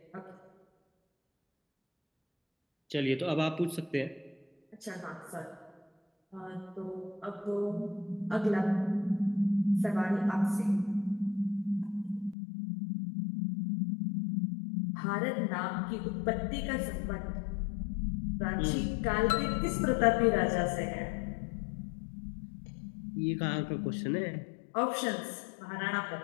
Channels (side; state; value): right; drops out; at 12.4 s